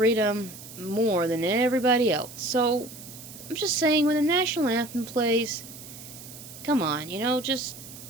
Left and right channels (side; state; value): right; noise; hiss, 15 dB below the sound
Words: more than everybody else. So, I'm just saying, when the national anthem plays, come on, just